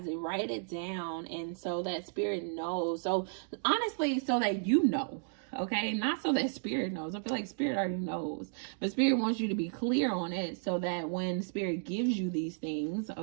it, write it down. And so that Spirit knows. So honestly, so that you know. Okay, not so that Spirit knows. I feel like Spirit already knows, but Spirit wants you to be clear on it so that when Spirit gives you these things,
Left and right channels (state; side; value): silent; left; digital silence